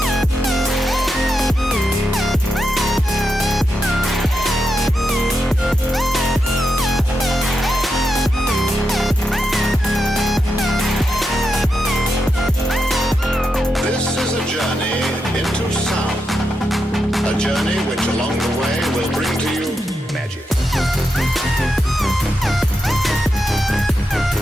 This is a journey into sound. A journey which along the way will bring to you magic.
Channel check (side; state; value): both; normal; correlation 0.86